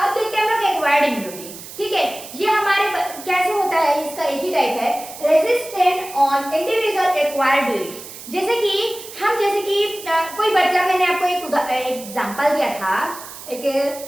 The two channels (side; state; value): right; noise; hiss, 14 dB below the sound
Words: देखते हैं हम लोग एक्वायर्ड इम्यूनिटी। ठीक है, ये हमारे कैसे होता है, इसका एक ही टाइप है, resistant on individual acquired during. जैसे कि कोई बच्चा, मैंने आपको एक एग्जांपल दिया था